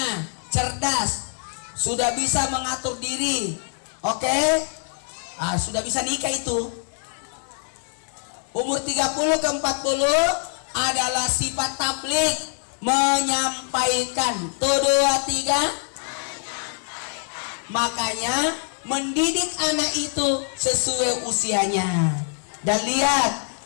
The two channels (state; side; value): silent; right; 62 dB below the other